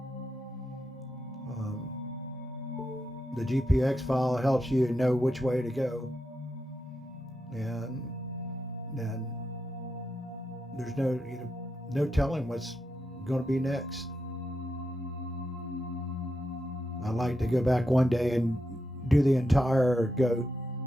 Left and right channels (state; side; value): normal; both; correlation 0.86